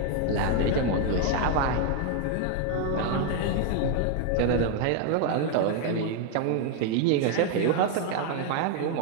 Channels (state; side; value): different; both; correlation 0.00